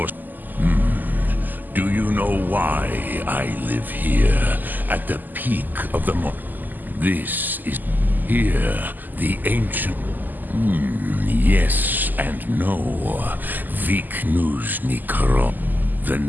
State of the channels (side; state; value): left; late; 0.086 ms